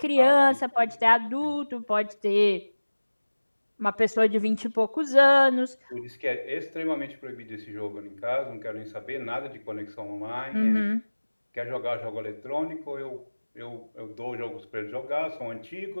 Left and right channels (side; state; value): both; inverted; correlation -1.00